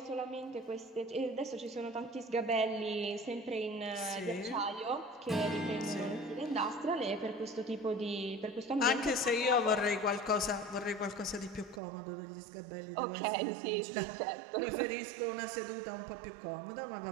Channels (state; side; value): drops out; left; at 11.8 s